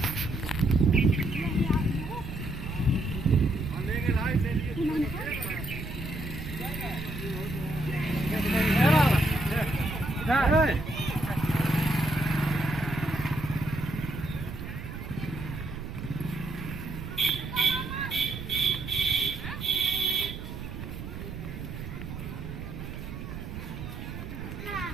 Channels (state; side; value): noise; right; rumble, 8 dB below the sound